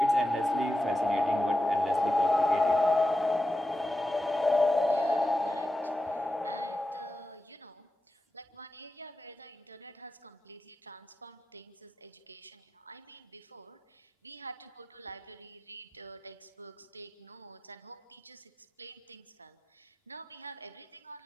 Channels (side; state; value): both; normal; correlation 0.90